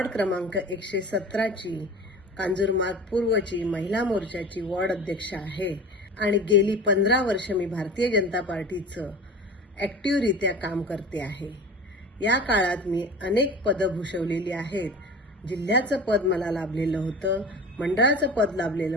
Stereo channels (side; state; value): both; normal; correlation 0.36